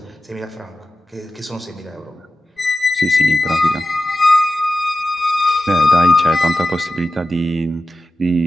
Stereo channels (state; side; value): normal; both; correlation 0.93